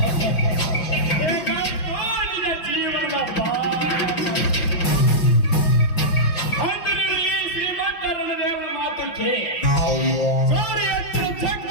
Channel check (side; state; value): right; late; 5.8 ms